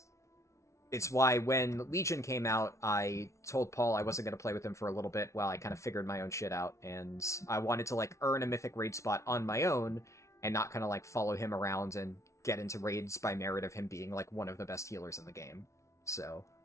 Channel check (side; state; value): right; late; 0.14 ms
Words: it's why when Legion came out, I told Paul I wasn't going to play with him for a little bit while I kind of figured my own shit out. And I wanted to, like, earn a Mythic raid spot on my own, and not kind of, like, follow him around and get into raids by merit of him being, like, one of the best healers in the game. So,